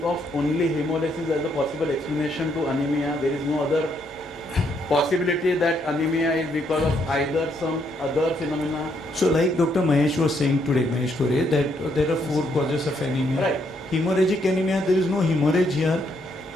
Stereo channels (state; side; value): normal; both; correlation 0.74